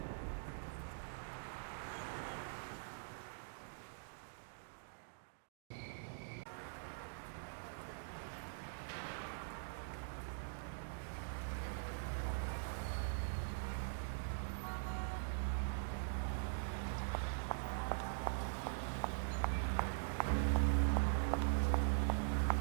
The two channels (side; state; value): left; silent; digital silence